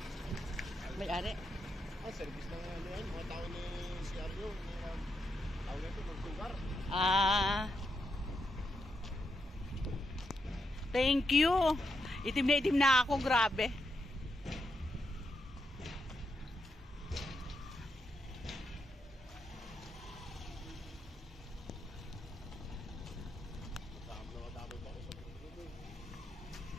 May-ari? Service na nga ano yan, mga tao ni CRU. Tao na ito, magsugar. Thank you. Itim na ako, grabe.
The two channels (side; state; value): both; normal; correlation 0.83